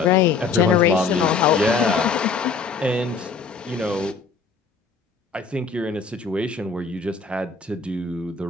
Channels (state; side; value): quieter; right; 5.0 dB